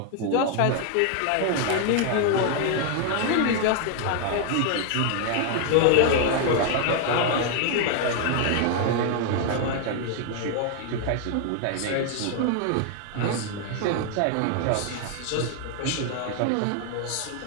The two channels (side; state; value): both; different; correlation 0.00